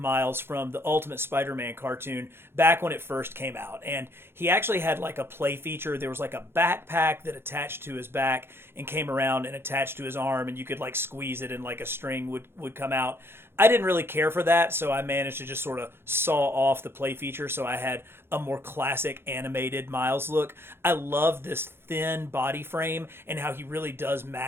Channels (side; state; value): left; late; 0.11 ms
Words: from the Ultimate Spider-Man cartoon back when it first came out. And he actually had like a play feature. There was like a backpack that attached to his back and came around and attached to his arm, and you could like squeeze it and like a string would come out. I didn't really care for that, so I managed to just sort of saw off the play feature so I had a more classic animated Miles look. I love this thin body frame and how he really does